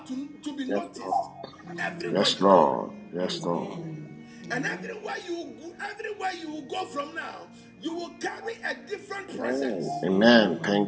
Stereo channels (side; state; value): both; identical; correlation 1.00